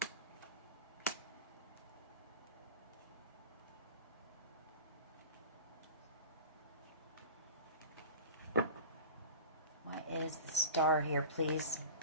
What is the Star here, please?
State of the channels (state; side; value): inverted; both; correlation -0.33